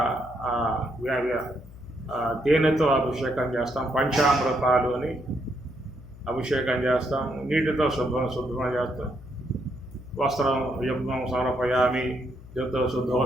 తేనెతో అభిషేకం చేస్తాం, పంచామృతాలు అని అభిషేకం చేస్తాం, నీటితో శుభ్రం చేస్తాం, వస్త్రం యుగ్మం సమర్పయామి, యుద్ధ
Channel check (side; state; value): left; noise; hum, 18 dB below the sound